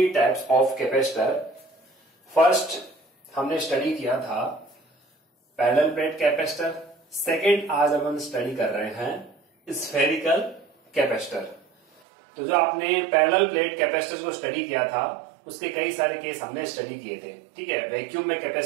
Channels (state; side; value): drops out; left; at 12.0 s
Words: types of capacitor. First हमने स्टडी किया था पैरेलल प्लेट कैपेसिटर। सेकेंड आज अपन स्टडी कर रहे हैं स्फेरिकल कैपेसिटर। तो जो आपने पैरेलल प्लेट कैपेसिटर को स्टडी किया था उसके कई सारे केस हमने स्टडी किए थे। ठीक है, वैक्यूम में